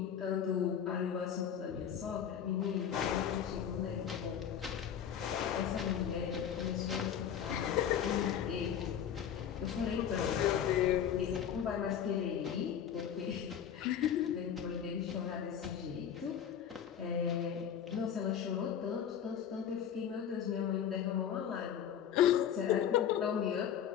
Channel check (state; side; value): quieter; right; 8.8 dB